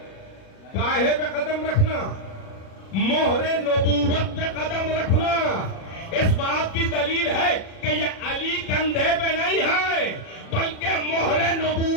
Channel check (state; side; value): late; right; 37 ms